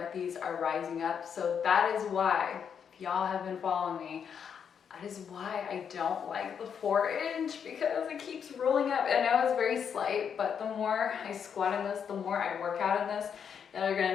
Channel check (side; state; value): right; quieter; 7.4 dB